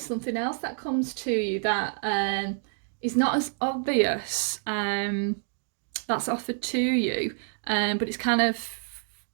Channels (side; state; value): left; silent; 59 dB below the other